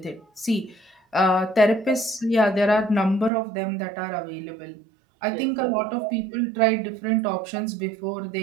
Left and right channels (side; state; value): left; drops out; at 3.3 s